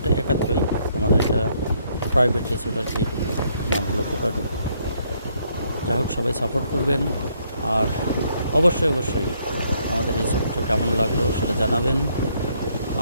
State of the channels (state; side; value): inverted; both; correlation -0.70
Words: একাত্রই। আমাদের এটা প্রাইভেট রিসোর্ট আর কি, নাম হলো কুডাডো। যাই হোক, সবাই সাপোর্ট করবেন। আর অবশ্যই আমাদের রিসোর্টটা কেমন লাগলো সেটা জানাবেন।